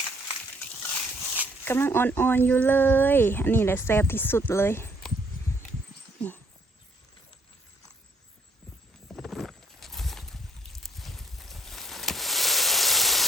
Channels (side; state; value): both; normal; correlation 0.66